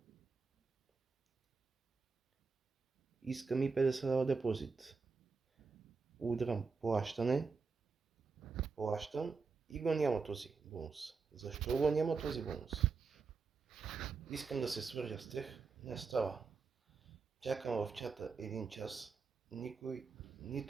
Искам и 50 лева депозит. Удрям плащане, плащам и го няма този бонус. Защо го няма този бонус? Искам да се свържа с тях, не става. Чакам в чата един час, никой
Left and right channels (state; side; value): quieter; left; 4.7 dB